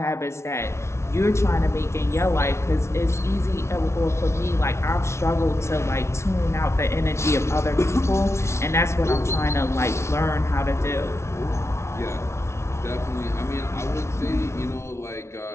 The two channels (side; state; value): right; late; 0.13 ms